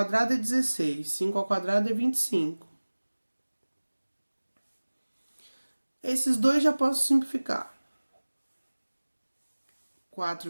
é 16, 5 ao quadrado é 25. Esses dois já posso simplificar. 4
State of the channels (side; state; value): both; inverted; correlation -1.00